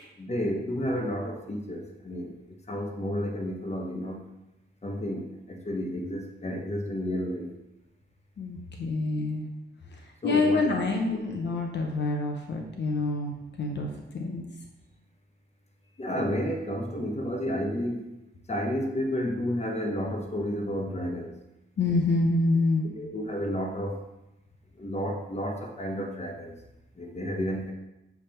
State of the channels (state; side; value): normal; both; correlation 0.65